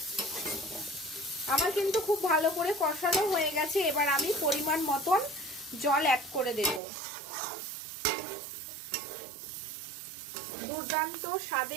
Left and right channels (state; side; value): drops out; left; at 6.8 s